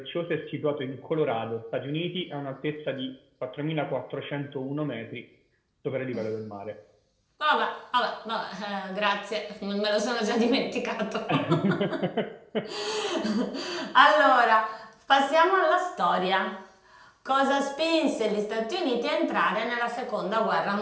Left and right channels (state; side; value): identical; both; correlation 1.00